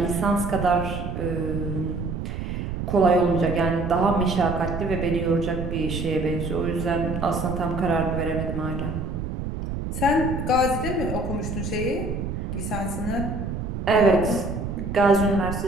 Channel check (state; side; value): noise; right; rumble, 4 dB below the sound